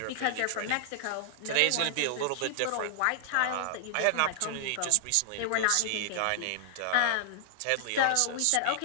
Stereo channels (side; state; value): both; different; correlation -0.01